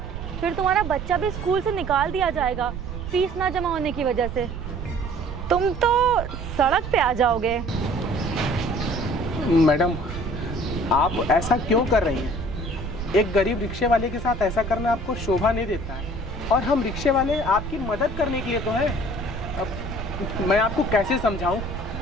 फिर तुम्हारा बच्चा भी स्कूल से निकाल दिया जाएगा फीस ना जमा होने की वजह से। तुम तो सड़क पे आ जाओगे। मैडम, आप ऐसा क्यों कर रही हैं? एक गरीब रिक्शे वाले के साथ ऐसा करना आपको शोभा नहीं देता है। और हम रिक्शे वाले आपकी मदद करने के लिए तो हैं। अब मैं आपको कैसे समझाऊं?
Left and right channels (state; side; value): noise; right; rumble, 8 dB below the sound